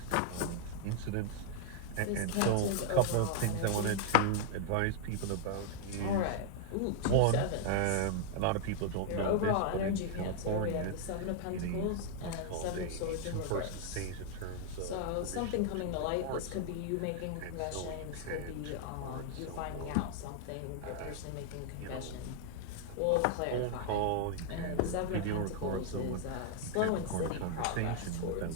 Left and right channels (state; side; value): different; both; correlation 0.00